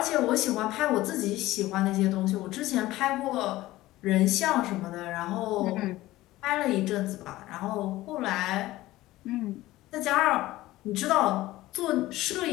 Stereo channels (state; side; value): quieter; right; 17.0 dB